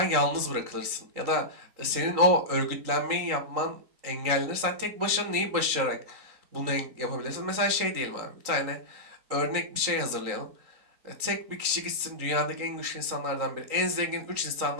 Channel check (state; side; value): late; left; 3.9 ms